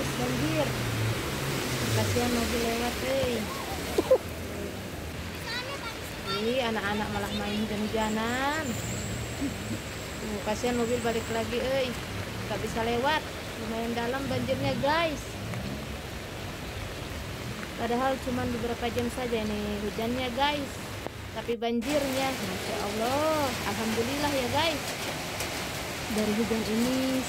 banjir. Kasihan mobil lewat, Ih, anak-anak malah main hujan-hujanan. Kasihan mobil balik lagi, nggak bisa lewat. Lumayan dalam banjirnya guys. Padahal cuma beberapa jam saja ini hujannya guys. Tapi banjirnya, Masya Allah, Alhamdulillah ya guys. Dari hujan ini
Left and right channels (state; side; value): identical; both; correlation 1.00